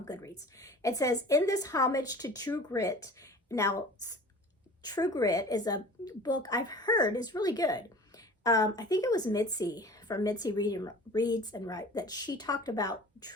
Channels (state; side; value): normal; both; correlation 0.42